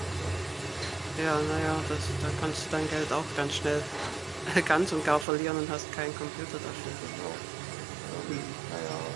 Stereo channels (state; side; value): drops out; left; at 5.2 s